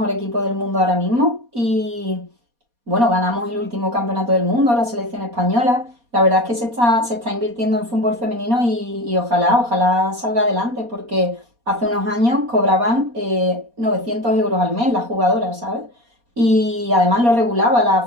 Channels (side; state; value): left; late; 4.2 ms